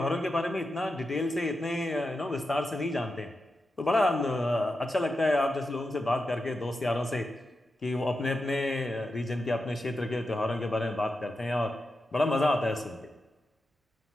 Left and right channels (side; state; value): both; normal; correlation 0.89